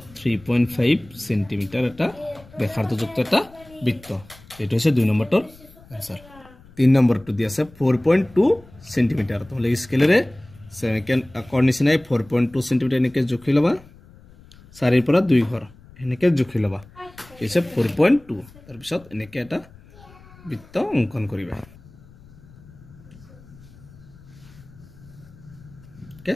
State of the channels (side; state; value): left; noise; rumble, 23 dB below the sound